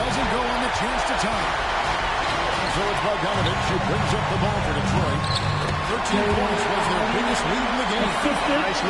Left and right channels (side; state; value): both; identical; correlation 1.00